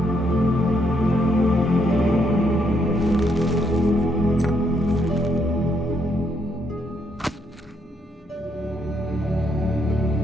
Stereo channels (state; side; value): normal; both; correlation 0.74